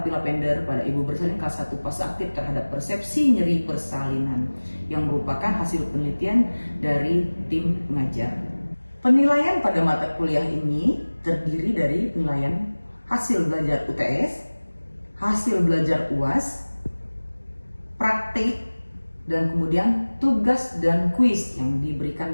lavender pada ibu bersalin kelas 1 fase aktif terhadap persepsi nyeri persalinan, yang merupakan hasil penelitian dari tim pengajar. Penilaian pada mata kuliah ini terdiri dari penilaian hasil belajar UTS, hasil belajar UAS, praktik, dan kemudian tugas dan kuis yang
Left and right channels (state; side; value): inverted; both; correlation -1.00